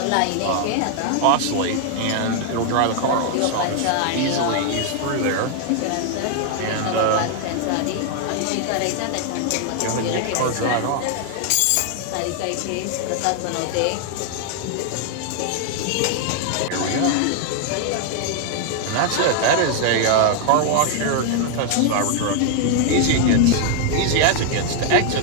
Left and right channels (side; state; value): both; different; correlation 0.00